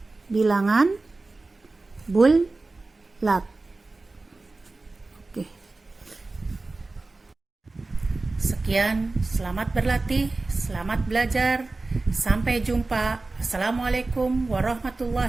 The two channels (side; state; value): left; quieter; 3.4 dB